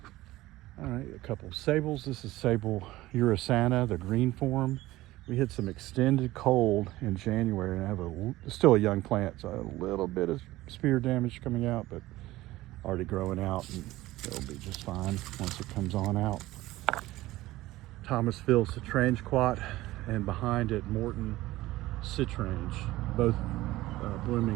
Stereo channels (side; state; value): left; quieter; 17.4 dB